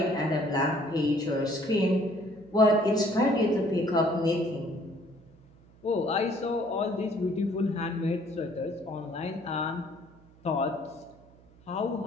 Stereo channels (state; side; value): noise; right; hum, 26 dB below the sound